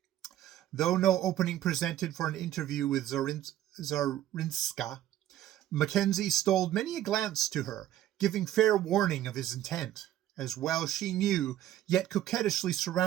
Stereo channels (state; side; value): quieter; left; 12.6 dB